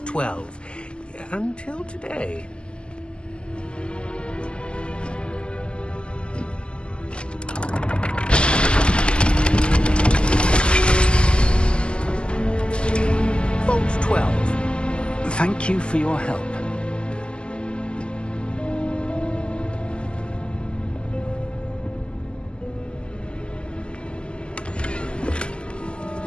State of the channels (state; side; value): late; right; 0.051 ms